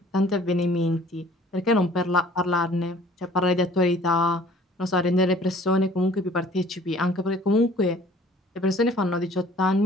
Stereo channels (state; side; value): normal; both; correlation 0.53